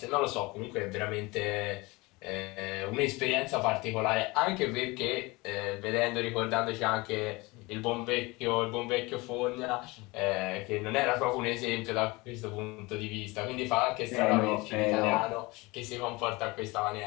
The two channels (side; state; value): right; quieter; 23.7 dB